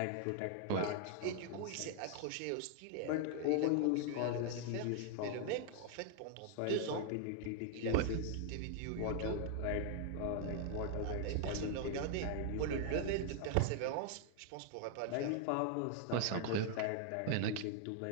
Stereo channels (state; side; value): different; both; correlation 0.00